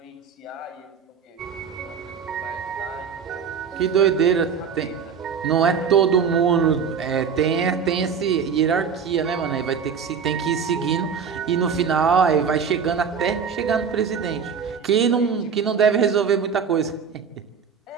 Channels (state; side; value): quieter; left; 6.5 dB